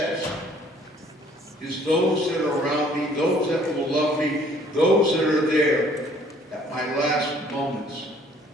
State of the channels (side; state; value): both; normal; correlation 0.59